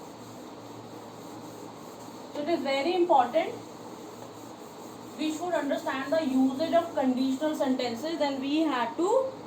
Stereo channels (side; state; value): both; identical; correlation 1.00